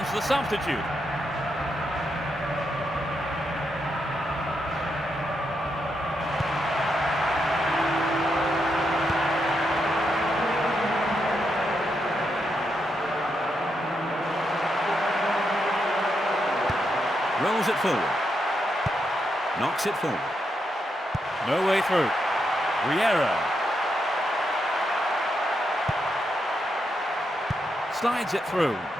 the substitute. Rolls it forward. Knocks it forward. No way through. Riera. Slides it through.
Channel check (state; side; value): normal; both; correlation 0.82